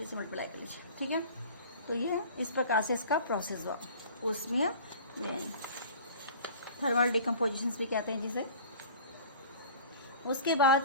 से मल्टीप्लाई कर लीजिए, ठीक है। तो ये इस प्रकार से इसका प्रोसेस हुआ ऊष्मीय वियोजन, थर्मल डिकम्पोजिशन भी कहते हैं जिसे। उसके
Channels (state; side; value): inverted; both; correlation -0.42